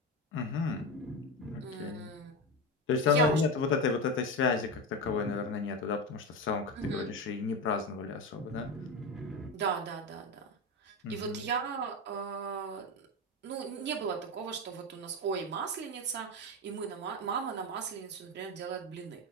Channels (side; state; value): both; normal; correlation 0.18